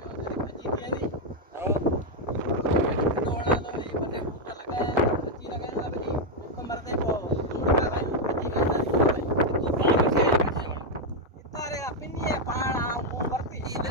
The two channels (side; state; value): both; normal; correlation 0.01